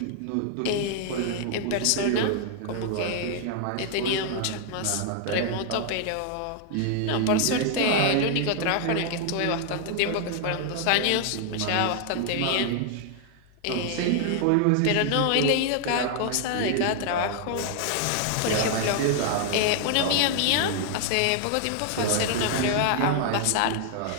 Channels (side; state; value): both; different; correlation 0.00